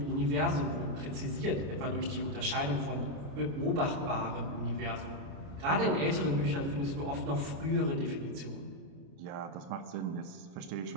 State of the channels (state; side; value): late; left; 29 ms